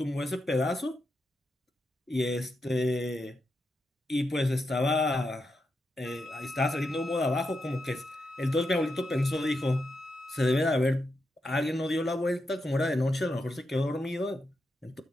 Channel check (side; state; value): both; normal; correlation 0.85